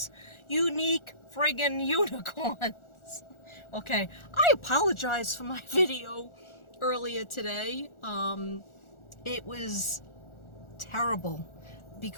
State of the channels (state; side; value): late; right; 1.4 ms